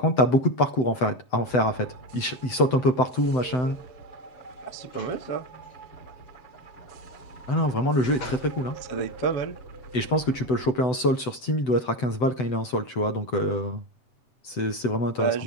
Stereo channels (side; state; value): right; late; 7.9 ms